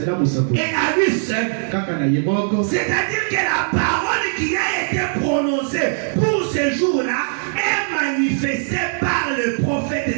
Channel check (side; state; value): left; silent; digital silence